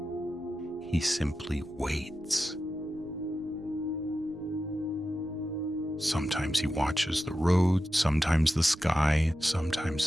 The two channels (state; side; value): noise; right; rumble, 23 dB below the sound